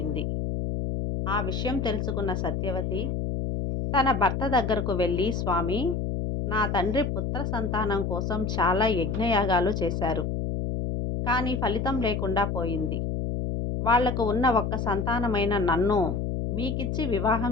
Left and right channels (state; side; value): noise; left; hum, 1 dB below the sound